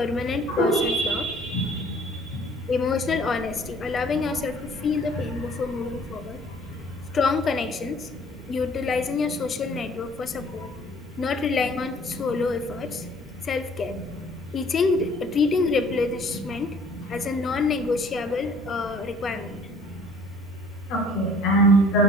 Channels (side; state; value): both; normal; correlation 0.55